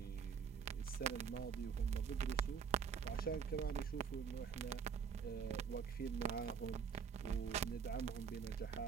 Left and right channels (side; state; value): left; quieter; 6.6 dB